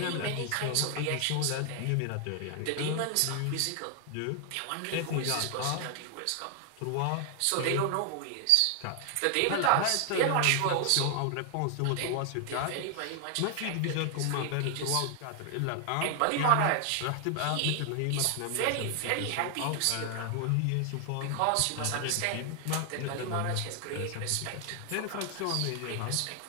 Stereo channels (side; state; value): both; different; correlation 0.00